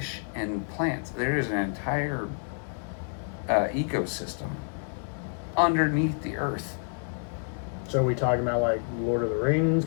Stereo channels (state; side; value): silent; right; digital silence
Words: and plants. There is an entire ecosystem underneath the earth. So are we talking about like Lord of the Rings